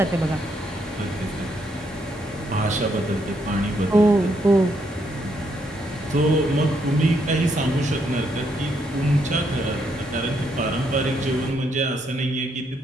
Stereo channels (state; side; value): normal; both; correlation 0.75